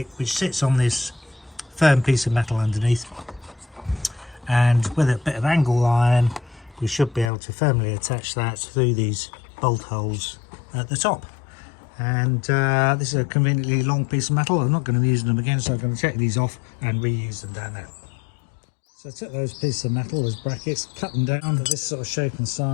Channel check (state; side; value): drops out; right; at 7.3 s